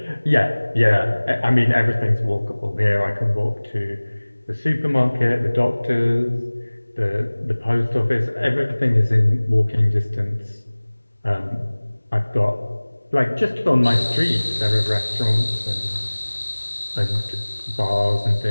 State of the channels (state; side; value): inverted; both; correlation -1.00